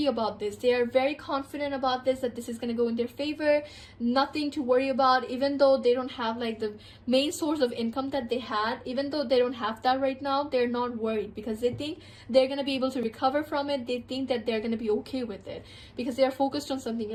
about this. They are very confident about this, that this is going to go in their favor, nothing to worry about. Even though they don't have like the main source of income that they had, even though they don't have that right now, they're not worried because they think they're going to be able to recover from it. They think that they're going to be okay with it because they are focused on something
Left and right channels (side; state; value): both; identical; correlation 1.00